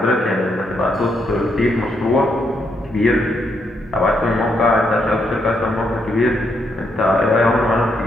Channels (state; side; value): normal; both; correlation 0.77